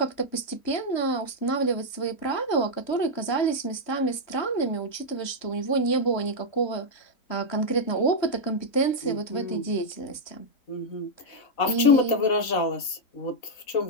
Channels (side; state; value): right; late; 4.0 ms